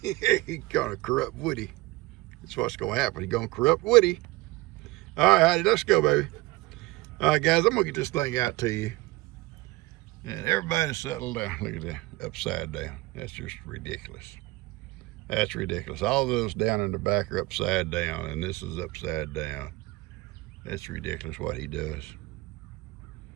He's gonna corrupt Woody. That's what's gonna happen. He's gonna corrupt Woody. All right, Hattie, let's go, baby. All right, guys, I'm gonna get this thing out to you. And everybody settle down. Look at that, upside down. That's just ridiculous. That's ridiculous. All those down in the back are upside down, and this is upside down. That's ridiculous what he does.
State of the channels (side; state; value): left; quieter; 21.2 dB